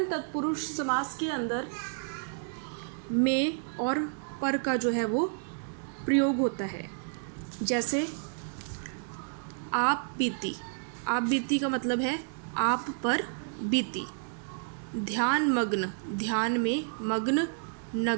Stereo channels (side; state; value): left; silent; digital silence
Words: तत्पुरुष समास के अंदर में और पर का जो है वो प्रयोग होता है। जैसे आप बीती, आप बीती का मतलब है आप पर बीती। ध्यान मग्न, ध्यान में मग्न।